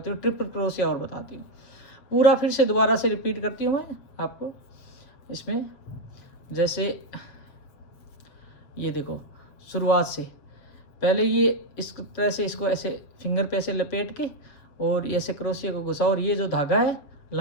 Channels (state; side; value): late; right; 7.2 ms